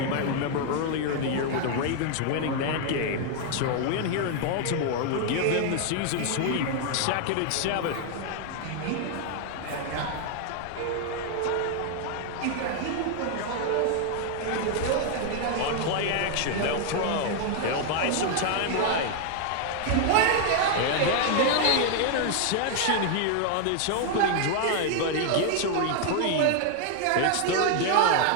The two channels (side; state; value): both; different; correlation 0.00